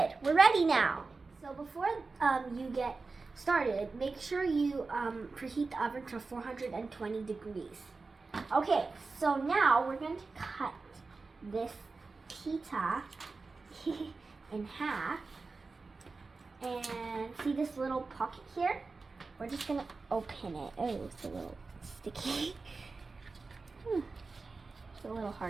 We're ready now. So before you get started, make sure you preheat the oven to 420 degrees. Okay, so now we're going to cut this pita in half. And see this little pocket here? We're just going to open it. Oh, it's a little sticky. It's a little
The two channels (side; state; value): left; quieter; 4.0 dB